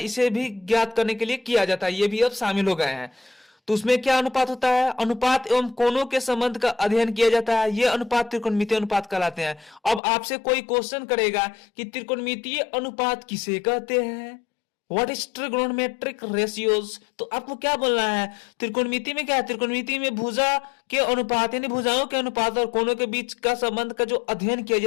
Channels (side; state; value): right; drops out; at 10.0 s